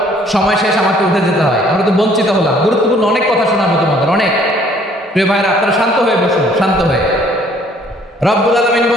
সময় শেষ, আমাকে উঠে যেতে হয়, আমরা তো বঞ্চিত হলাম। গুরুত্বপূর্ণ অনেক কথা শোনাবো তোমাদের, অনেক। প্রিয় ভাইরা, আপনারা শান্ত হয়ে বসুন, শান্ত হয়ে। রব্বুল আলামিন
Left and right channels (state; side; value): normal; both; correlation 0.60